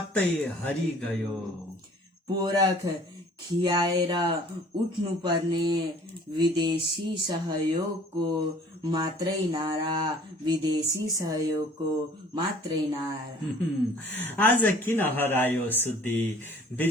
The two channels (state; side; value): normal; both; correlation 0.52